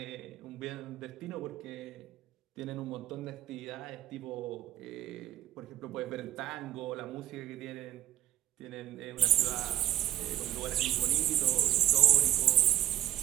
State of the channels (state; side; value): quieter; left; 12.8 dB